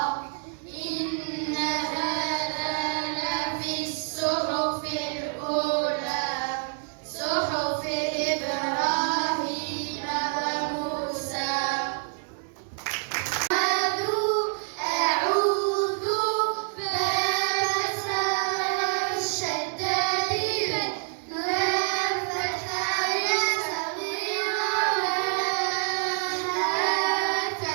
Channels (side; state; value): left; silent; 60 dB below the other